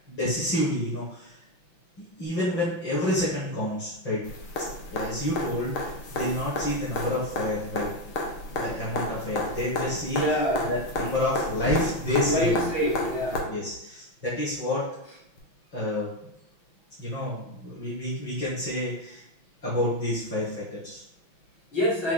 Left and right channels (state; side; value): late; right; 5.9 ms